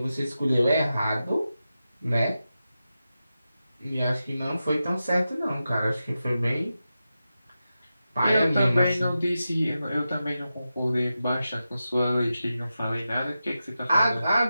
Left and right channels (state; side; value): inverted; both; correlation -0.92